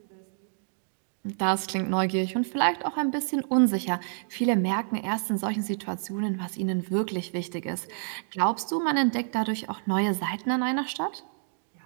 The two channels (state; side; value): silent; left; digital silence